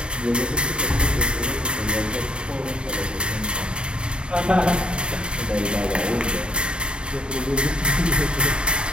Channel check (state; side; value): late; left; 0.052 ms